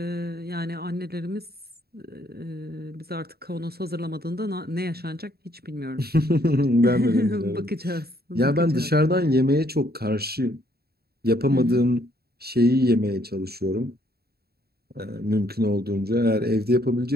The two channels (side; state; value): left; late; 0.46 ms